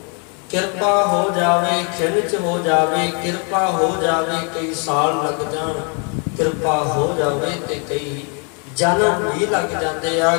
ਕਿਰਪਾ ਹੋ ਜਾਵੇ, ਖਿੰਚ ਹੋ ਜਾਵੇ, ਕਿਰਪਾ ਹੋ ਜਾਵੇ, ਕਈ ਸਾਲ ਲੱਗ ਜਾਣ, ਕਿਰਪਾ ਹੋ ਜਾਵੇ ਤੇ ਕਈ ਜਨਮ ਵੀ ਲੱਗ ਜਾਂਦੇ ਆ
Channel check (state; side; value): quieter; right; 36.9 dB